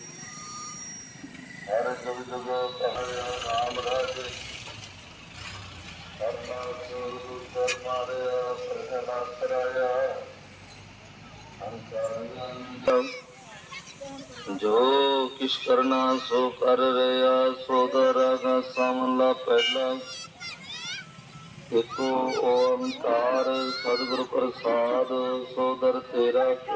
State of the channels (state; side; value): identical; both; correlation 1.00